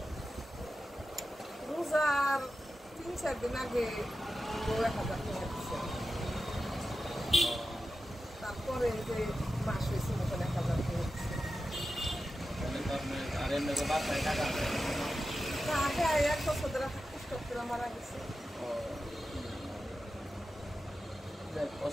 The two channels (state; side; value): normal; both; correlation 0.92